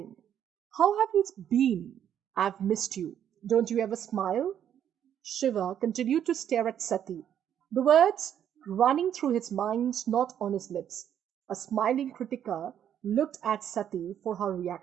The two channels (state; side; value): quieter; left; 9.7 dB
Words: How have you been? I've missed you. Don't you ever smile?" Shiva continued to stare at Sati, the words running through his mind, not on his lips. A smiling Kritika looked at Sati for her